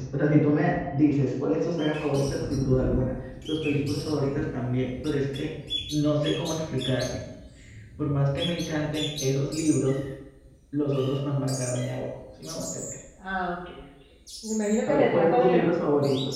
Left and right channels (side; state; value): both; identical; correlation 1.00